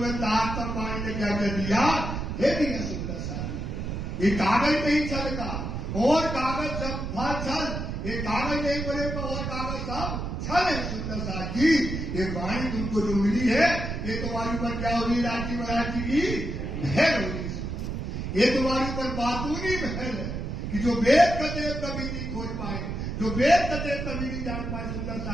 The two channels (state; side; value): noise; right; rumble, 4 dB below the sound